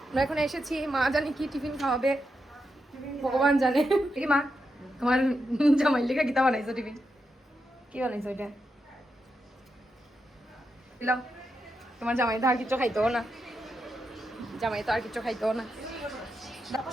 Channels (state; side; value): normal; both; correlation 0.86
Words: আমরা এখন এসেছি। মা জানি কি টিফিন খাওয়াবে, ভগবান জানে। কি মা, তোমার জামাই লেখা কিতা বানাইছো? টিফিন কি বানাইছো? এটা দিলাম। তোমার জামাই তো আর কিছু খাইতেও না, জামাই তো আর কিছু খাইতেও না।